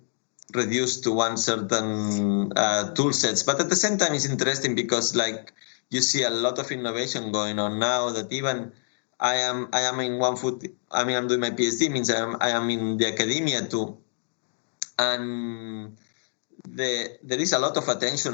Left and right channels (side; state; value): right; silent; digital silence